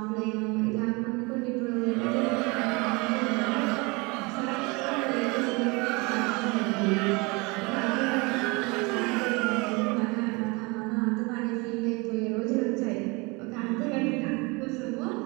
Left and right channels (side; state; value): left; quieter; 27.1 dB